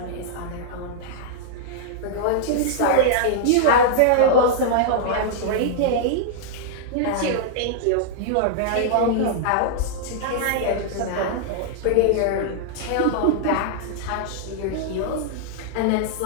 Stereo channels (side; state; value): both; different; correlation -0.02